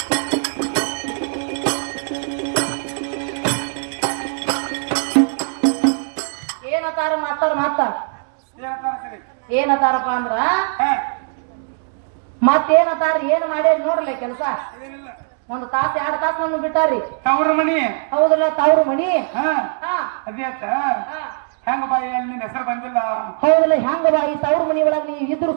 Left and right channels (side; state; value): left; silent; digital silence